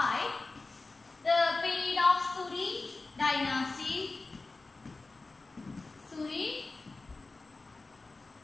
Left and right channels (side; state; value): right; quieter; 3.5 dB